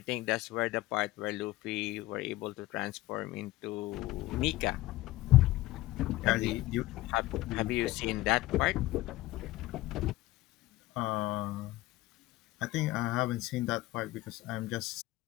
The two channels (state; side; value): quieter; right; 17.7 dB